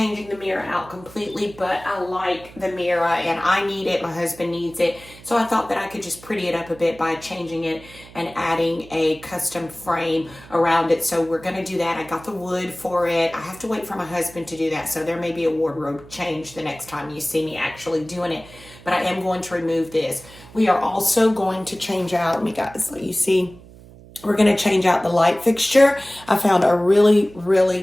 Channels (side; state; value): right; noise; hum, 21 dB below the sound